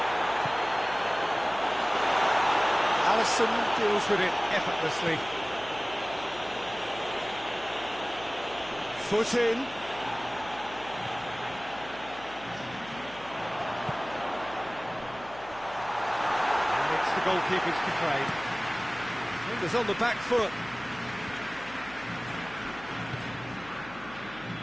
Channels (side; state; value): left; noise; hum, 18 dB below the sound